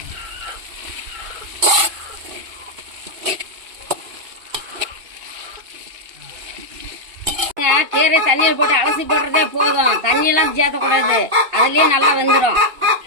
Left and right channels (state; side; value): late; left; 2.8 ms